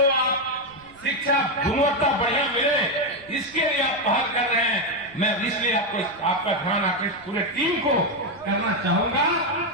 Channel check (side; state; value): right; noise; rumble, 26 dB below the sound